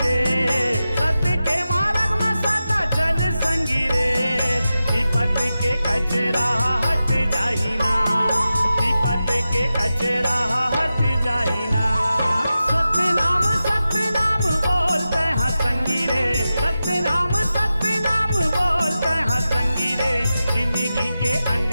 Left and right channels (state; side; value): inverted; both; correlation -0.92